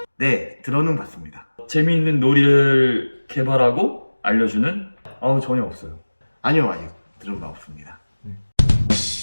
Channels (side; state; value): both; inverted; correlation -1.00